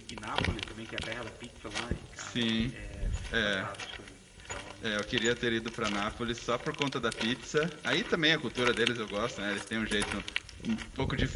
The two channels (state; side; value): identical; both; correlation 1.00